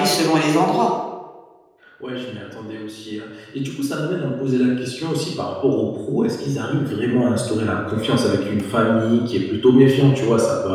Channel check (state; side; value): identical; both; correlation 1.00